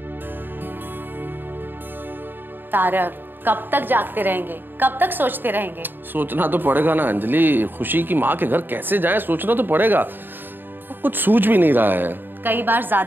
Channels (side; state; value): left; late; 0.094 ms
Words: तारक, कब तक जागते रहेंगे, कब तक सोचते रहेंगे? सोचना तो पड़ेगा ना अंजलि। खुशी की माँ के घर कैसे जाएं, सोचना तो पड़ेगा। कुछ सूझ भी नहीं रहा है। कई बार